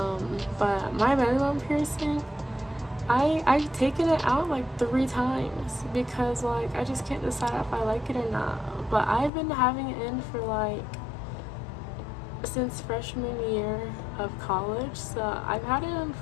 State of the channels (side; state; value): right; drops out; at 9.3 s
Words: my belly button piercing, I've taken it out like 3 times because like I just can't decide if I like it or not. But I've been having it in for like since freshman year of college, so I've had it in